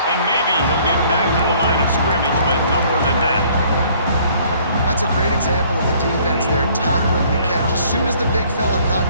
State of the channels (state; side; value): inverted; both; correlation -0.59